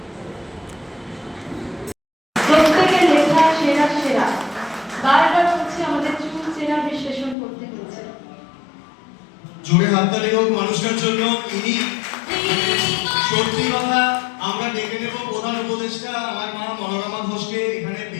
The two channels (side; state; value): right; drops out; at 7.4 s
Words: জোরে হাততালি হোক মানুষের জন্য। ইনি সত্যি কথা, আমরা ডেকে নেব প্রধান উপদেষ্টা আমার মা মনোরমা ঘোষকে। এখানে